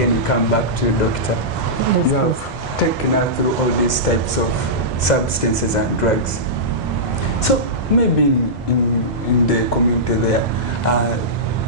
we come back to Doctor. Yes, you have taken us through all these types of substances and drugs. So maybe in the community there,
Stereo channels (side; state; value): both; normal; correlation -0.15